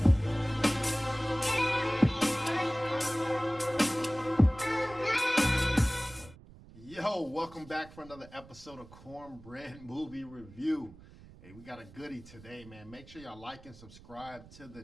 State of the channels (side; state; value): right; noise; rumble, 20 dB below the sound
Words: Yo, welcome back for another episode of Cornbread Movie Review. Hey, we got a goodie today, man. Make sure y'all like and subscribe to